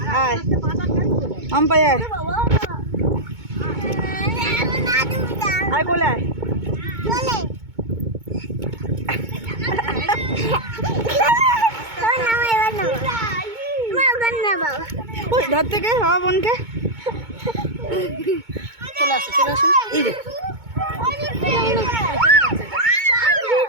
আয় আম্পাই আয়, আয় কোলে আয়। ওই ধর থেকে বাবা বোনকে চলে আসো চলে আসো। এই রে।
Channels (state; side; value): late; left; 2.2 ms